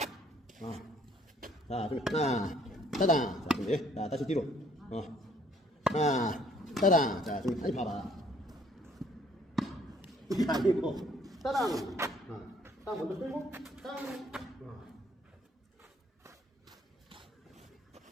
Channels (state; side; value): normal; both; correlation 0.62